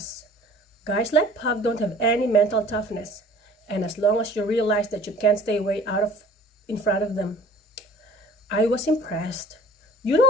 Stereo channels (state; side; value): normal; both; correlation 0.50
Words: Guys like Pug don't have any mental toughness. And as long as you realize that you can't stay way in front of them. I was impressed. You